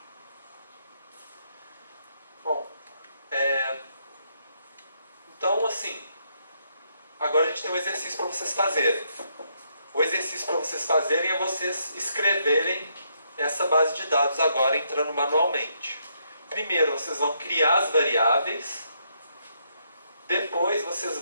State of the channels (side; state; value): both; inverted; correlation -0.75